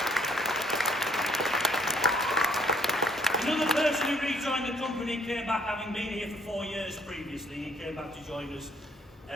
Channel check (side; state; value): both; normal; correlation 0.63